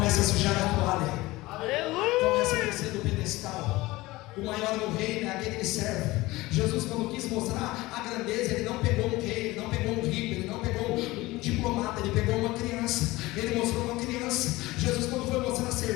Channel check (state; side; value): quieter; right; 19.8 dB